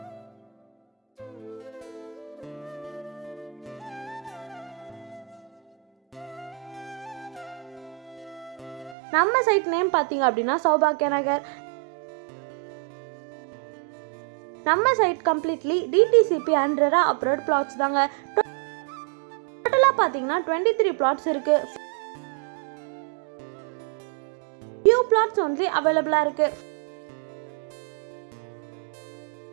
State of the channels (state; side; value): drops out; left; at 9.0 s